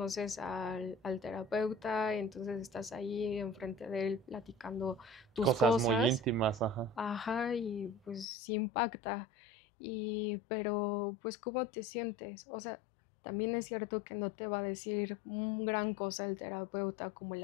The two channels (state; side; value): drops out; right; at 8.2 s